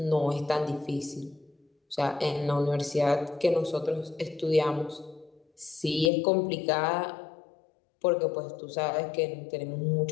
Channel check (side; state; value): right; drops out; at 6.1 s